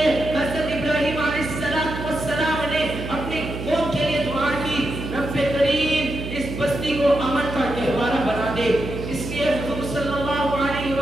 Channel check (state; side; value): noise; right; hum, 7 dB below the sound